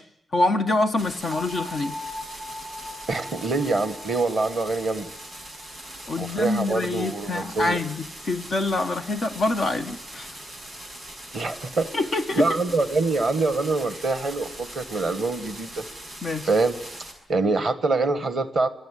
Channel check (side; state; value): both; normal; correlation 0.79